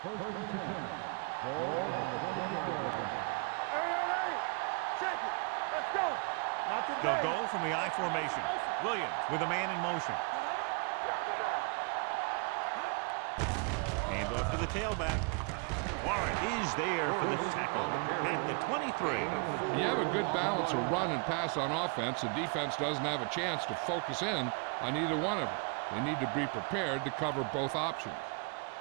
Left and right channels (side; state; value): left; quieter; 34.6 dB